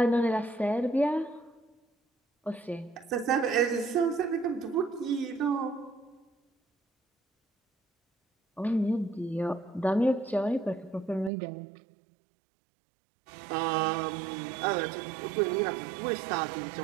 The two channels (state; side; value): drops out; left; at 11.3 s